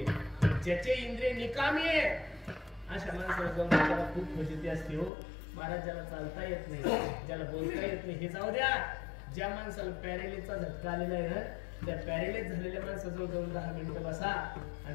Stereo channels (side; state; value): right; drops out; at 5.1 s